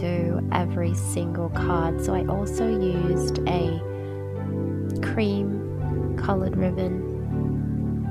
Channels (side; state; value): both; identical; correlation 1.00